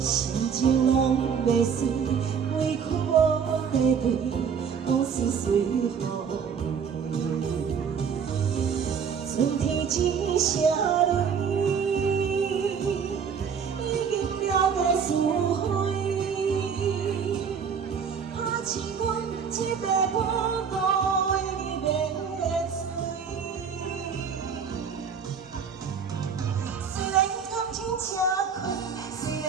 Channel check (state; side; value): quieter; left; 6.7 dB